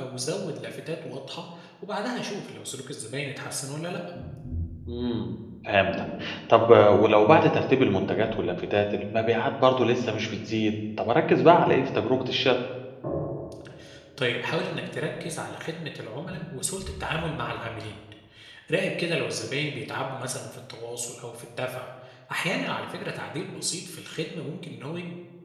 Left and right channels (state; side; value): identical; both; correlation 1.00